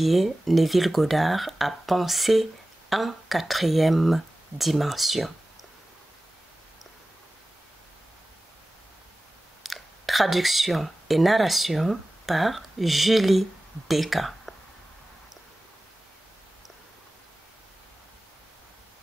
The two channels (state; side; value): normal; both; correlation 0.96